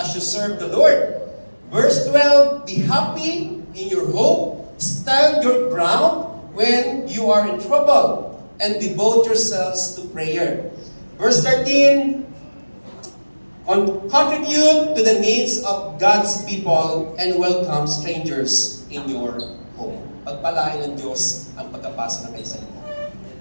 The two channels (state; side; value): inverted; both; correlation -1.00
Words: you serve the Lord. Verse 12, be happy in your hope, stand your ground when you are in trouble, and devote yourselves to prayer. Verse 13, contribute to the needs of God's people and welcome strangers in your home. Pagpalain ng Diyos ang pagkapasa ng kayo sa inyo.